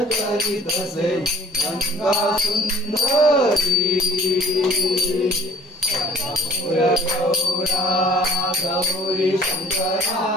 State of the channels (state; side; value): normal; both; correlation 0.53